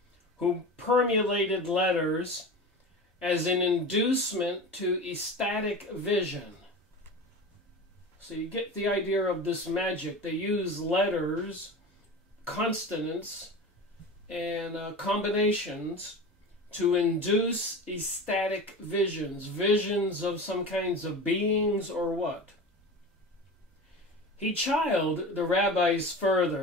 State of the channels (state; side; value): normal; both; correlation 0.31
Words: who permulated letters as an inducement to ecstatic vision. So you get the idea of this magic. They use letters, consonants, and combinations to induce ecstatic visions, visions of some kinds of beings or what. He chided the rabbis